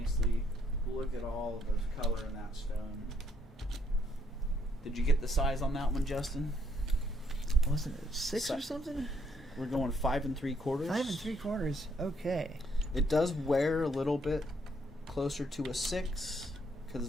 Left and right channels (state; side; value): normal; both; correlation 0.71